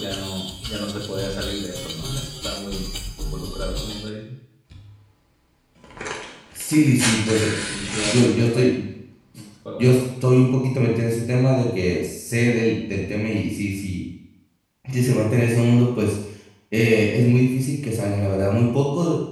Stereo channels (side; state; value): both; identical; correlation 1.00